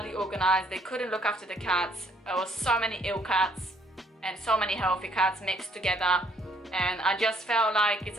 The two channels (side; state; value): both; normal; correlation 0.66